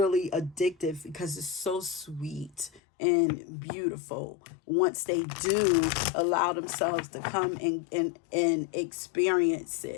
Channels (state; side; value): drops out; right; at 2.8 s